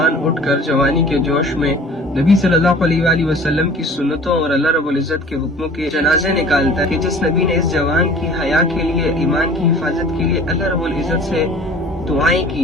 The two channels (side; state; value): both; normal; correlation 0.46